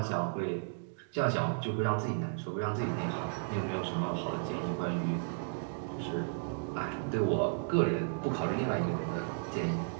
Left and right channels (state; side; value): silent; left; digital silence